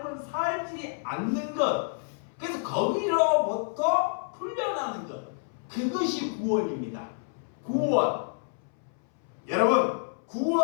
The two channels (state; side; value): silent; right; 59 dB below the other